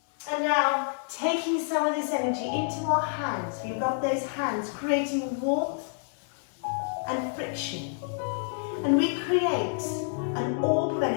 And now, taking some of this energy into our hands, we rub those hands, creating warmth and friction. And we create an orb of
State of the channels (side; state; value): right; silent; 59 dB below the other